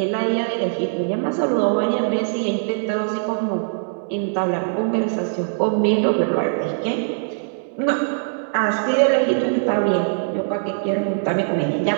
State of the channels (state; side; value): silent; left; digital silence